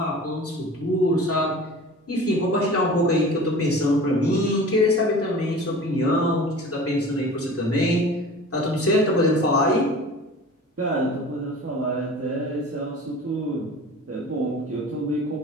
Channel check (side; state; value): both; normal; correlation 0.40